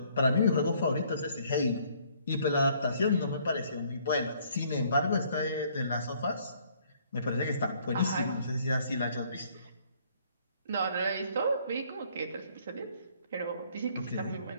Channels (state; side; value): inverted; both; correlation -0.63